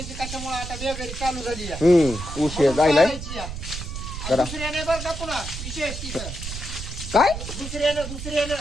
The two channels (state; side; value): noise; right; rumble, 8 dB below the sound